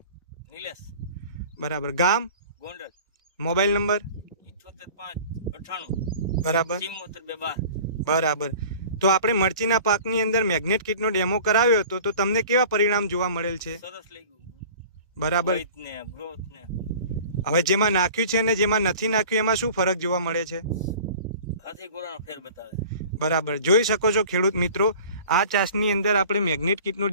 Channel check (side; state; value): both; inverted; correlation -0.43